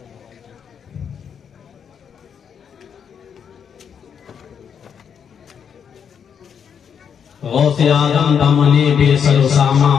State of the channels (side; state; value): right; quieter; 7.5 dB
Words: غوث آدم دامن بے سر و سامہ